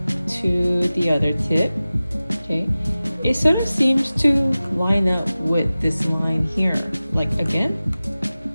to the other tip, okay, it sort of seems to line up with this line here. Like again,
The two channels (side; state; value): both; inverted; correlation -0.96